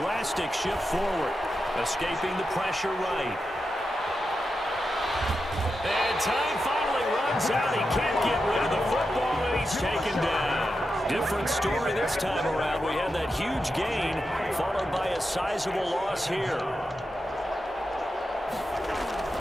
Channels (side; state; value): both; normal; correlation 0.89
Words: shift forward. Escaping the pressure right. And time finally runs out. He can't get rid of the football, and he's taken down. Different story this time around. We had that huge gain, followed by a sizable loss here.